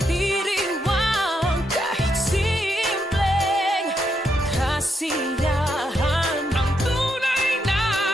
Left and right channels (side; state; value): both; normal; correlation 0.80